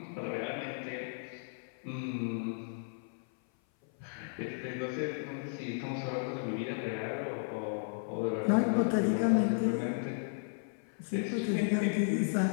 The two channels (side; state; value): right; silent; 55 dB below the other